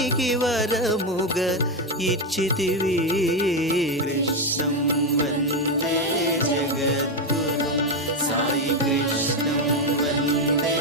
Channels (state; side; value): normal; both; correlation 0.09